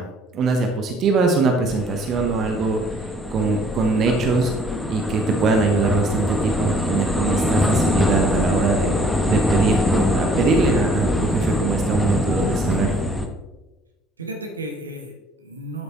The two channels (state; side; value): normal; both; correlation 0.60